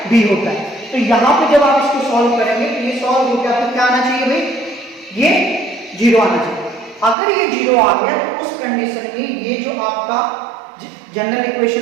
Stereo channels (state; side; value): drops out; left; at 7.2 s